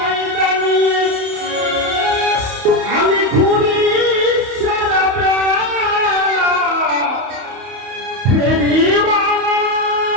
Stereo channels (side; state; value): left; late; 31 ms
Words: নিয়ে আমি ঘুরি সারা বেলা ফেরিওয়ালা।